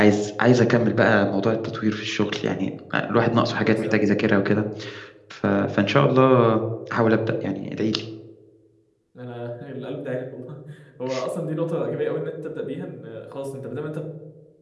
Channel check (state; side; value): identical; both; correlation 1.00